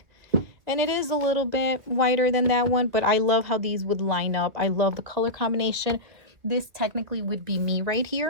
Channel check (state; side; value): late; left; 2.4 ms